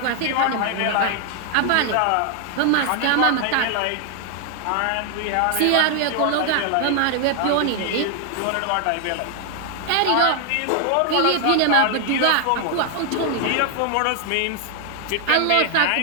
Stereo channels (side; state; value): both; different; correlation 0.00